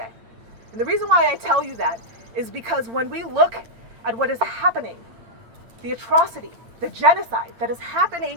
And the reason why I tell you that is because when we look at what is happening, the atrocity, the genocide that is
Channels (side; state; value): left; late; 8.9 ms